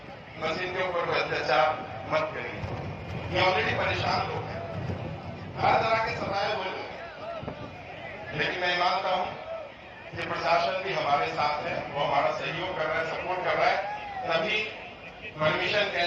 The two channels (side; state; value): both; identical; correlation 1.00